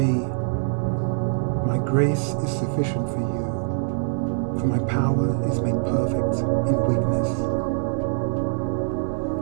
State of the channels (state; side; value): silent; left; digital silence